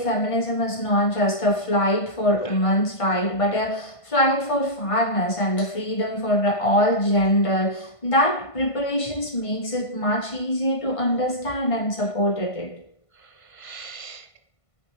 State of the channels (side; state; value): right; late; 1.5 ms